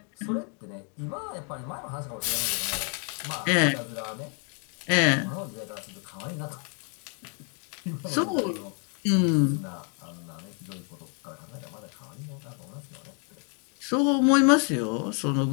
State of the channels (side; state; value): right; quieter; 39.5 dB